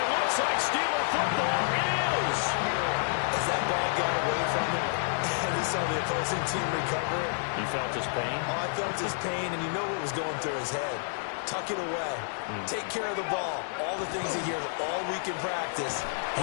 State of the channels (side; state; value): right; silent; 58 dB below the other